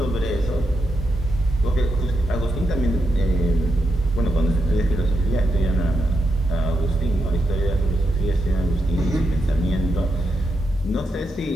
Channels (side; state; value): both; normal; correlation 0.83